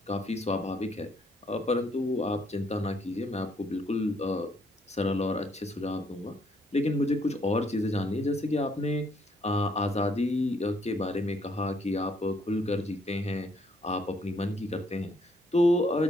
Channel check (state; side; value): normal; both; correlation 0.69